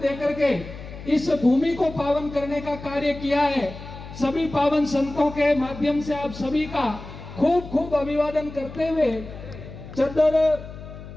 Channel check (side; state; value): left; noise; hum, 13 dB below the sound